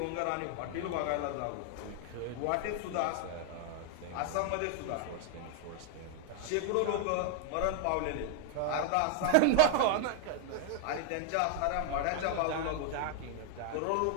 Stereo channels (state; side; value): different; both; correlation 0.00